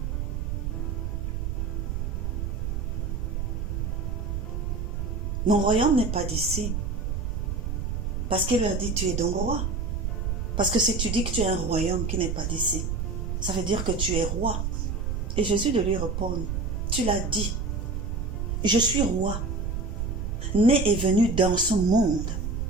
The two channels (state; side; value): noise; right; rumble, 2 dB below the sound